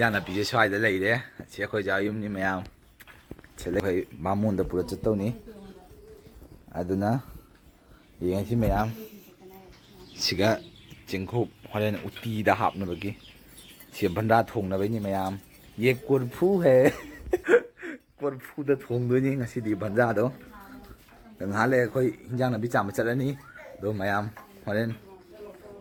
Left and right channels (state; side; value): identical; both; correlation 1.00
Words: नापी जे स्वाइदा लैरे से अखोय जा युमनी मयाम चले भाई मामून द पूरा चतौनी अदुना येंसी मयाम सिगा चिंखुप हरेन उटी दा हापनबगी से भंडा थोंगनबैनी मयाम ये कुरफू है कुरफू दा थोंगदोनी ngasi भंडा दो ngहाले अखोय हिंजांग नापी चाम चलनी दो मयाम हरेन